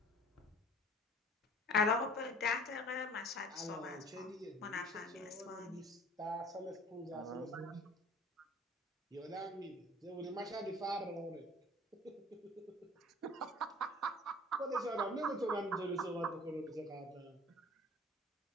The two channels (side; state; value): both; normal; correlation 0.46